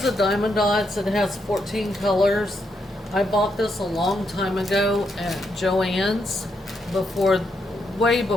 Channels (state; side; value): normal; both; correlation 0.79